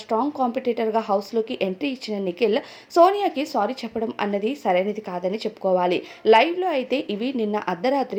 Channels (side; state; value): both; identical; correlation 1.00